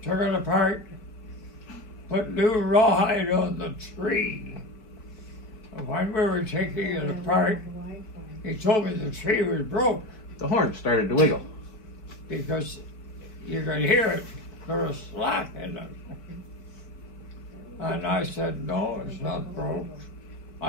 took it apart, put new rawhide on the tree. And when we were taking it apart, he told me the tree was broke. The horn started to wiggle. Because you could hear it, there was slack in it. And I said, no, it's not broke.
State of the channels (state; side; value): late; right; 4.5 ms